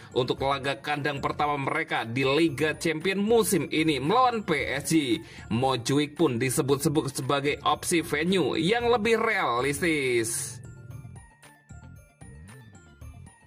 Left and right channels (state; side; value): identical; both; correlation 1.00